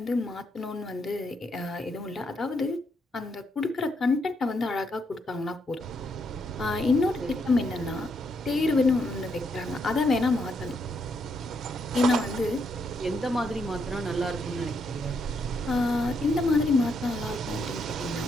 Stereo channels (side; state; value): both; normal; correlation 0.77